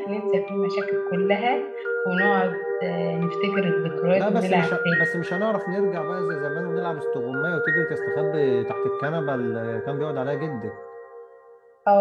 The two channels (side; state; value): both; identical; correlation 1.00